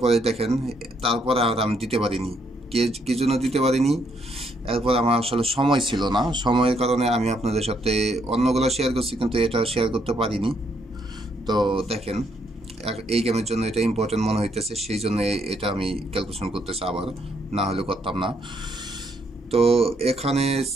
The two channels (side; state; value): both; normal; correlation 0.72